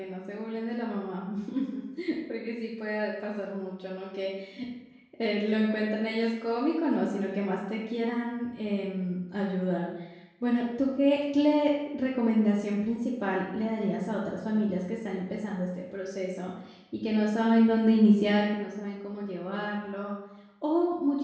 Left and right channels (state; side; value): identical; both; correlation 1.00